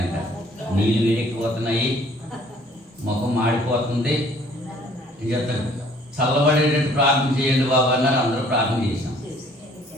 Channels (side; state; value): both; normal; correlation 0.57